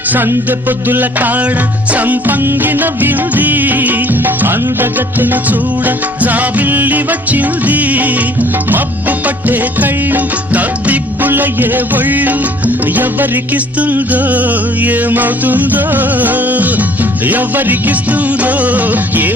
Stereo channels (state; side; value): normal; both; correlation 0.56